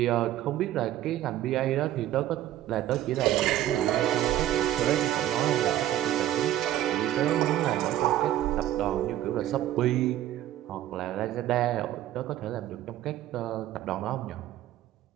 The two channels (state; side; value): quieter; left; 13.1 dB